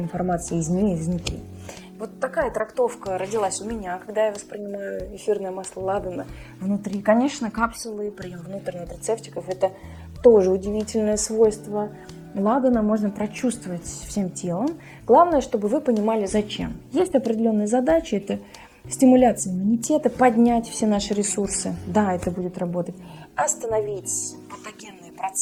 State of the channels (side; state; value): both; identical; correlation 1.00